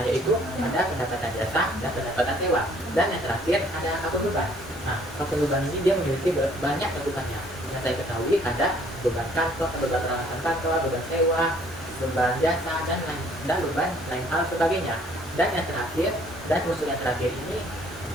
yaitu ada pendapatan jasa dan pendapatan sewa. Dan yang terakhir ada akun beban. Nah, akun beban ini dia memiliki banyak cakupannya. Yang saya ketahui ada beban kantor, beban peralatan kantor, beban sewa, beban jasa, dan beban lain hal sebagainya. Dan yang terakhir, dan unsur yang terakhir ini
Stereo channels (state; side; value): normal; both; correlation 0.60